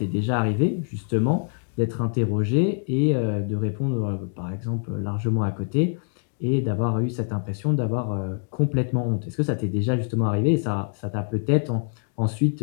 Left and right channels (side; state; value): right; silent; 62 dB below the other